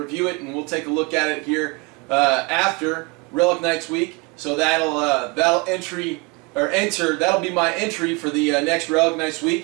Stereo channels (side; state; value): left; quieter; 28.3 dB